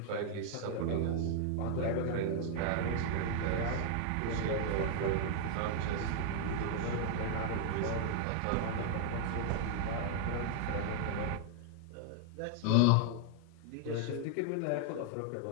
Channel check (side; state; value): both; different; correlation 0.00